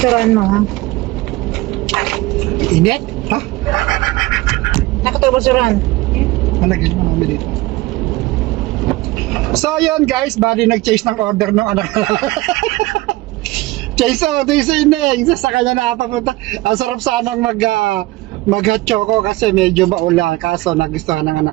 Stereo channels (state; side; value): quieter; left; 19.5 dB